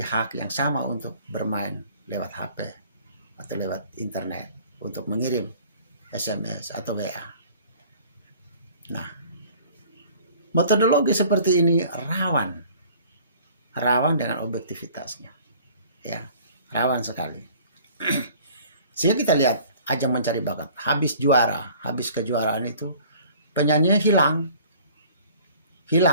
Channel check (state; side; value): inverted; both; correlation -0.51